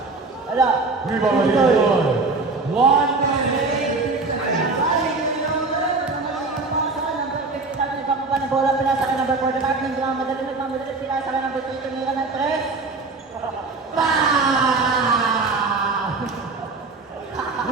Ala. Viva 1 minute. Ng bola, pinasa ka number 45, nagmamadali, pinasa ka number 3, tumira ng 3.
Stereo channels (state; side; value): quieter; left; 3.7 dB